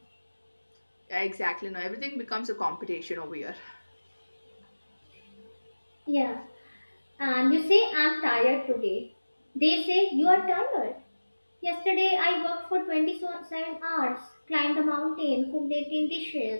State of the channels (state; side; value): inverted; both; correlation -1.00